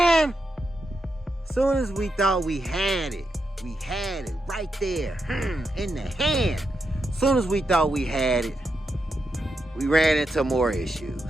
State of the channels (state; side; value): normal; both; correlation 0.85